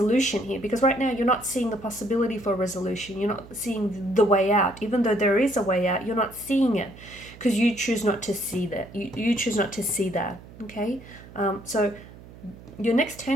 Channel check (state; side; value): noise; right; hum, 19 dB below the sound